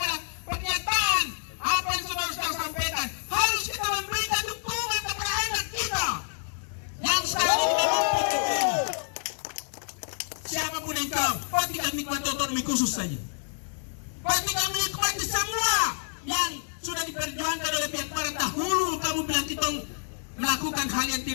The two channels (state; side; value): silent; right; 59 dB below the other